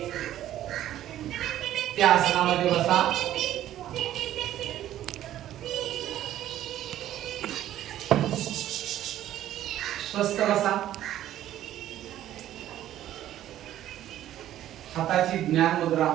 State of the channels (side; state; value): left; quieter; 12.6 dB